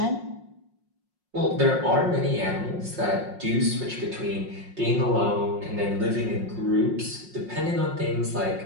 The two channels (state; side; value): late; left; 5.5 ms